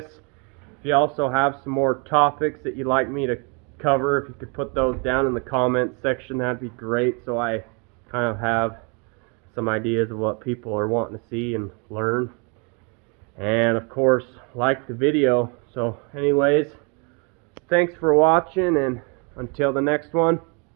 If you also have some more topics that you'd like me to cover, if you could put those down in the comments section, that'd be great, so I kind of have some ideas of what people are wanting to see and learn. And of course, like the video. So anyways, thanks for watching, and until the next one,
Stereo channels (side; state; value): left; quieter; 34.2 dB